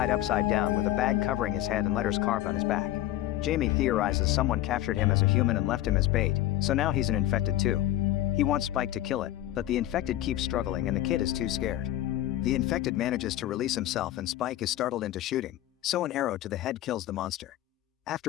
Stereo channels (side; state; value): right; quieter; 13.8 dB